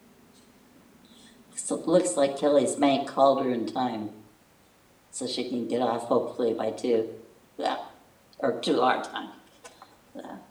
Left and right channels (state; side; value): identical; both; correlation 1.00